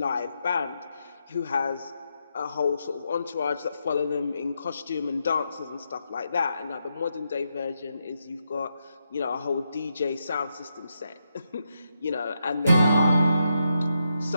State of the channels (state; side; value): inverted; both; correlation -0.83